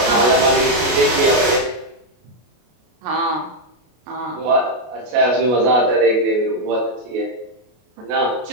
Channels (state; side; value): late; left; 33 ms